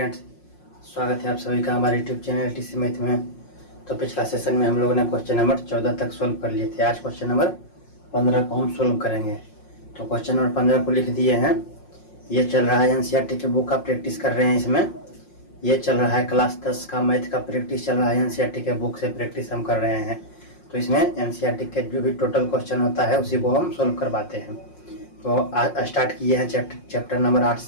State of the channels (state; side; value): late; right; 5.6 ms